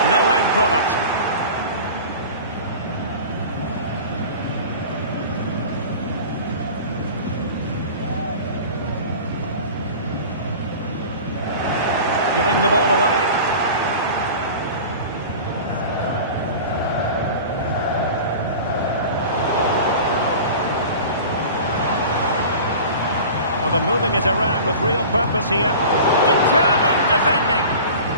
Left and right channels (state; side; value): inverted; both; correlation -0.37